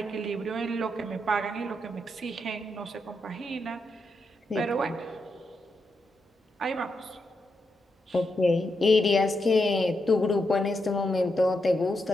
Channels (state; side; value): normal; both; correlation 0.83